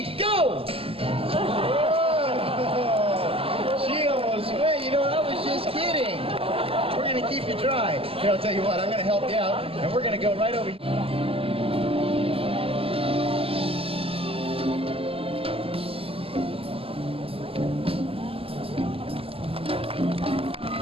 go! Whoa. She almost went. You know, I was just kidding. We're gonna keep you dry. Here, I'll tell you what, I'm gonna help you out, and we're gonna go right over here.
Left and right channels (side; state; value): left; late; 0.27 ms